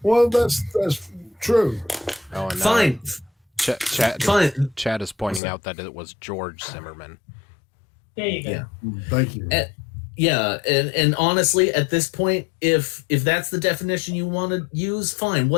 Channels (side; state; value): right; drops out; at 5.4 s